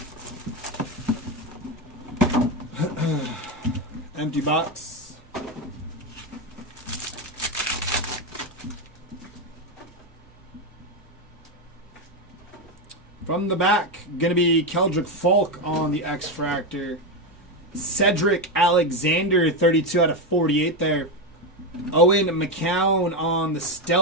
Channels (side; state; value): both; normal; correlation 0.10